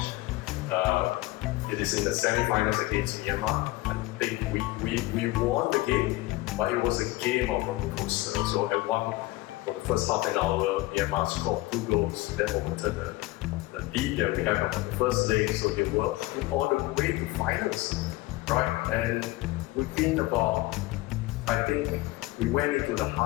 It is in the semi-finals against Myanmar. I think we won the game, but it was a game of roller coaster. So at for the first half an hour, Myanmar scored 2 goals that overturned the lead that we have on the first leg. So they were all the way to finals, right? And within about, I think we went into the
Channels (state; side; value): quieter; right; 19.5 dB